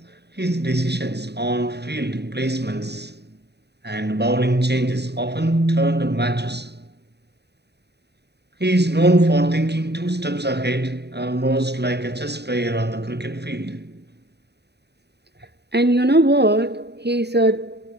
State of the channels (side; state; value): left; late; 0.48 ms